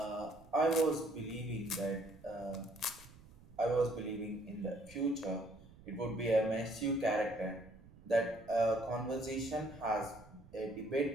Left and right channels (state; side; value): noise; right; rumble, 22 dB below the sound